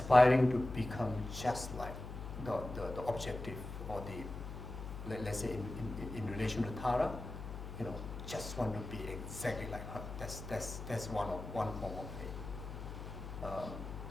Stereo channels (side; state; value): left; noise; hum, 9 dB below the sound